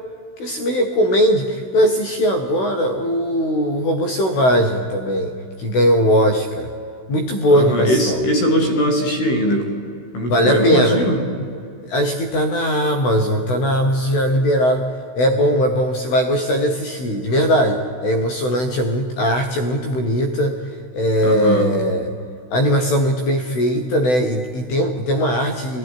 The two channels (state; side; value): late; right; 16 ms